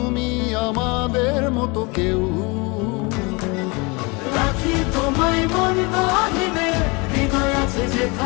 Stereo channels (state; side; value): quieter; right; 27.9 dB